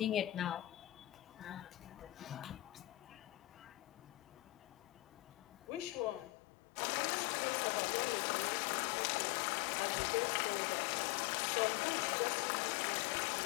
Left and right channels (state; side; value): drops out; right; at 6.3 s